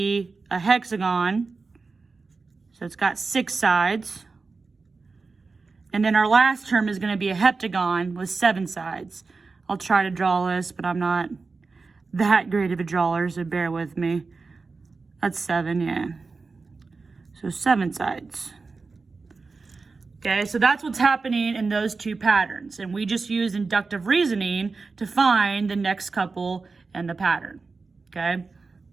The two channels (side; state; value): left; quieter; 4.2 dB